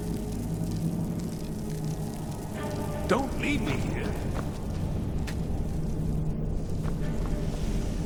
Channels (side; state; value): both; identical; correlation 1.00